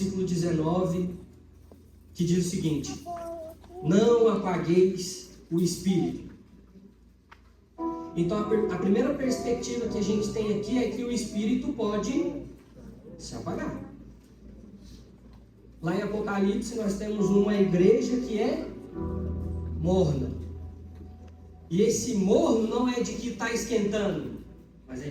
19, que diz o seguinte: não apagueis o Espírito. Então a primeira perspectiva que a gente tem aqui é que o Espírito pode se apagar. Lá em Apocalipse nós temos uma igreja que é morna. E esse morno não é de que está esquentando, mas é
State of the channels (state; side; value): identical; both; correlation 1.00